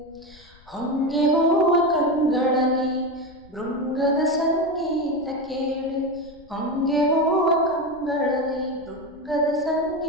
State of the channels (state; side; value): noise; left; rumble, 25 dB below the sound